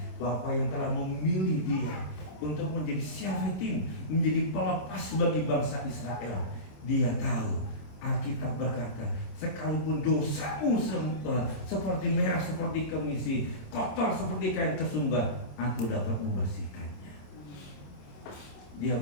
Bapa yang telah memilih dia untuk menjadi syafetim, menjadi pelepas bagi bangsa Israel. Dia tahu, Alkitab berkata, sekalipun dosamu seperti merah seperti kemisi, kotor seperti kain kesumba, aku dapat membersihkannya. Dia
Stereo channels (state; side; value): late; right; 27 ms